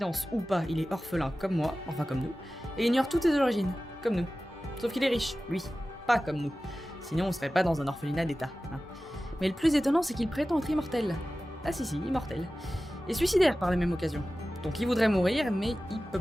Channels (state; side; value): normal; both; correlation 0.96